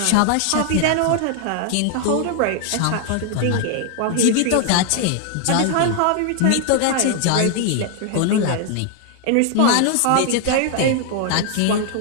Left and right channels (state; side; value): different; both; correlation 0.00